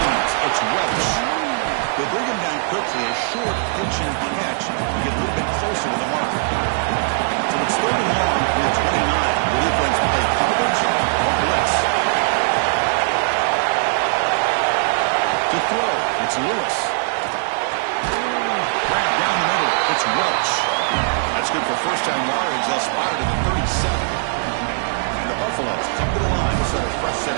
It's Welch. They bring him down quickly. A short pitch and catch to get a little bit closer to the mark. So it's 3rd and long from the 29. The defense play coverage or blitz. To throw, it's Lewis. Grab down the middle. It's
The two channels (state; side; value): silent; left; 66 dB below the other